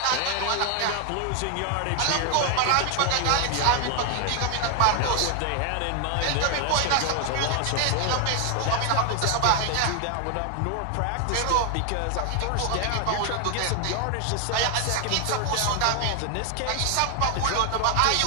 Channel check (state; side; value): different; both; correlation 0.00